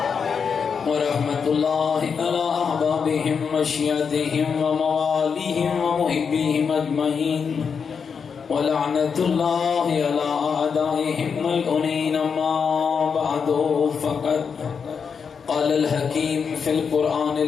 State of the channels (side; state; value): right; quieter; 6.2 dB